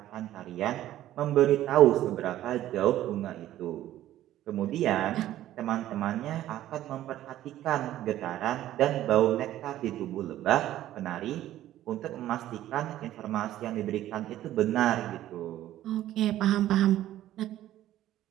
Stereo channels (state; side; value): quieter; left; 13.4 dB